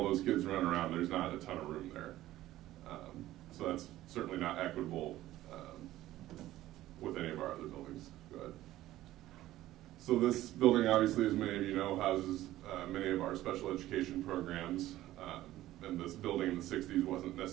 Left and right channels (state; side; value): quieter; left; 15.0 dB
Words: those kids running around, there's not a ton of room there. So that's certainly not equitable with any of our other buildings. Go ahead. So this building, obviously, as many of you know, houses many of our special education programs. And this building in the 60s wasn't